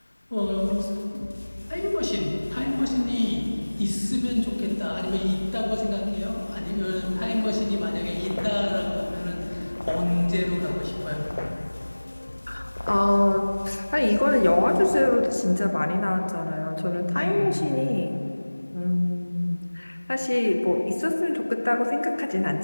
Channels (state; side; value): inverted; both; correlation -1.00